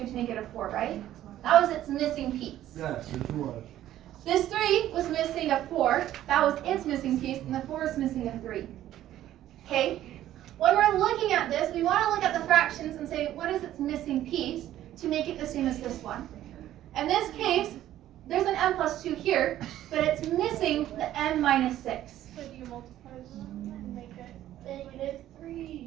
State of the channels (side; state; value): left; quieter; 12.9 dB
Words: to make it a 4, right? That was its missing piece. Yes, it was. This 3 was missing a 4, that was its missing piece, and the 4 is missing a 3. Okay? When we're looking at this, we want to look at the fractions and say, what is its missing piece to make it the same as this one? In this case, there's an m plus 2 here, but it's missing the m minus 6. So do you multiply them and make it -3.